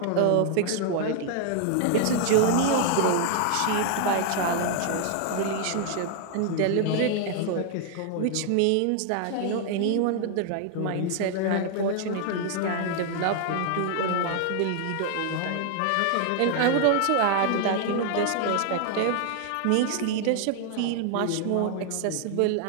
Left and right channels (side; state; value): both; different; correlation 0.00